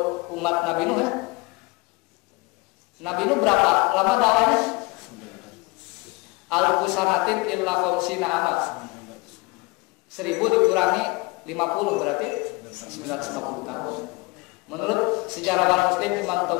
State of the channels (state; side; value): quieter; right; 25.2 dB